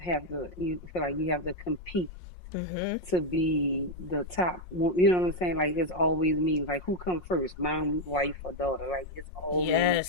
to. You feel like you have to compete to be the top. You know what I'm saying? Like, it's always me. Like, who come first, mom, wife, or daughter? Like, it's always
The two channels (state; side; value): late; right; 5.6 ms